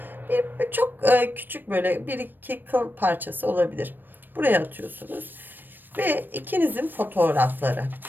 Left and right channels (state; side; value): late; left; 0.093 ms